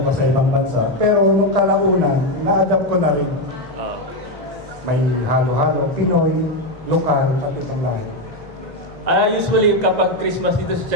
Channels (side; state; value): both; normal; correlation 0.08